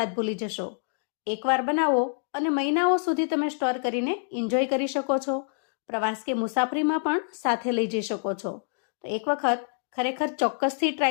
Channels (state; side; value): silent; right; digital silence